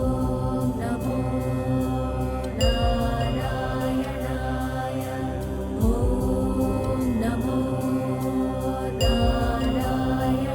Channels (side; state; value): both; identical; correlation 1.00